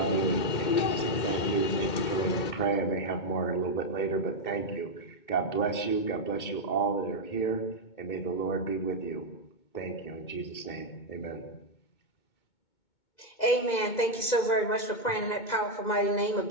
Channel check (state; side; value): late; right; 2.2 ms